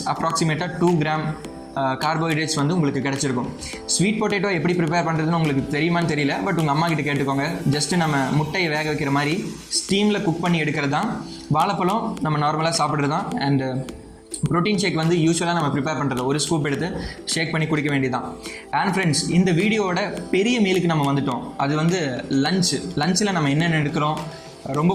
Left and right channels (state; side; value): identical; both; correlation 1.00